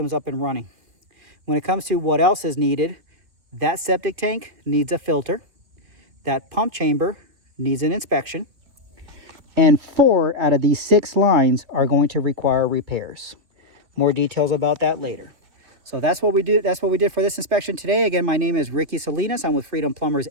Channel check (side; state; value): left; late; 2.8 ms